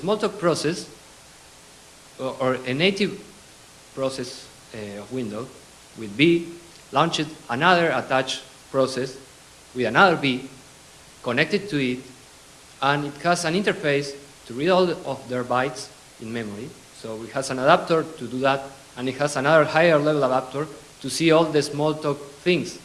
process or a native process of Windows with B launched another attached process with another B connected to it, and it has an interface to read all of their bytes in memory. So it has an adapter to do that, and it has another higher level adapter to see all the Smalltalk things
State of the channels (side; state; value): both; identical; correlation 1.00